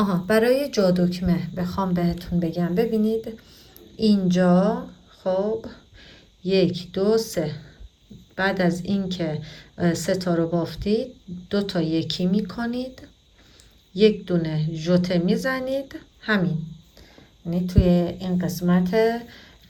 برای جا دکمه بخوام بهتون بگم، ببینید اینجا خب 1 2 3، بعد از اینکه 3 تا رو بافتید 2 تا یکی میکنید، یک دونه ژوته میزنید، همین. یعنی توی این قسمت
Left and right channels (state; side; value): identical; both; correlation 1.00